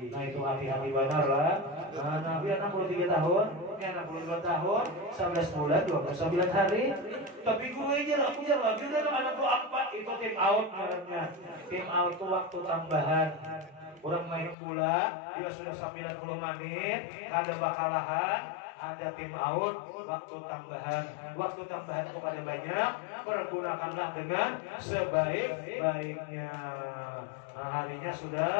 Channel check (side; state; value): right; drops out; at 14.6 s